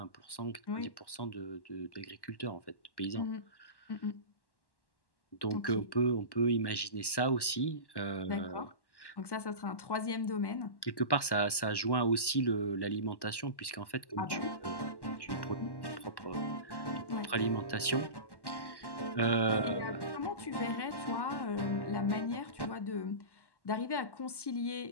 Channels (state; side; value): late; right; 1.1 ms